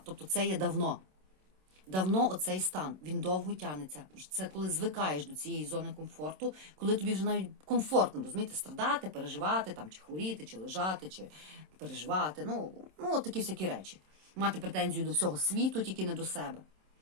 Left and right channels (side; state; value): left; late; 27 ms